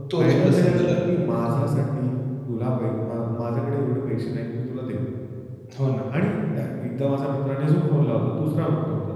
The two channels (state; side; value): identical; both; correlation 1.00